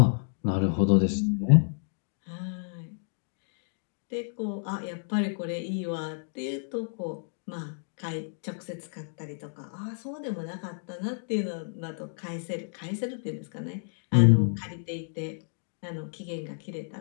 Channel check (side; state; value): right; silent; digital silence